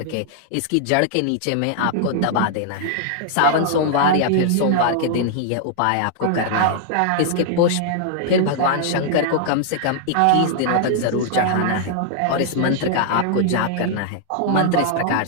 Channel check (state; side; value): different; both; correlation -0.01